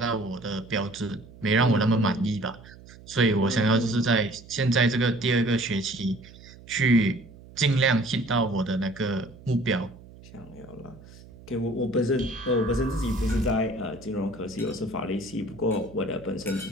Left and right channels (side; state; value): right; noise; hum, 20 dB below the sound